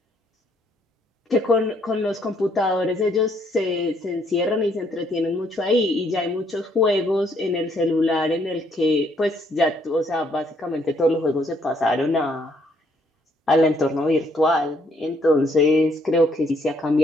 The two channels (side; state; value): both; normal; correlation 0.69